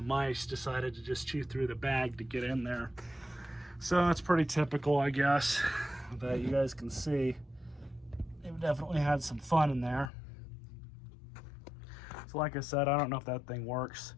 mice decided to just chew through the bag to get in there. So it's pretty typical, I guess, that you guys can see. They've definitely had some fun in there. So like I said, I don't know if that thing works.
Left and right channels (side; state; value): right; drops out; at 10.1 s